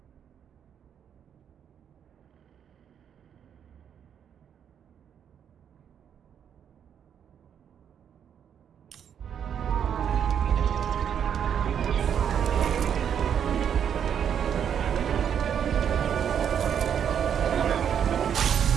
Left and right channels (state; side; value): quieter; left; 8.4 dB